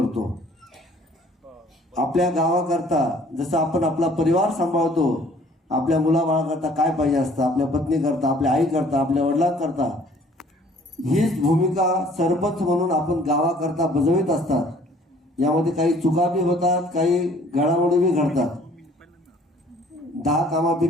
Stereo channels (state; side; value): normal; both; correlation 0.56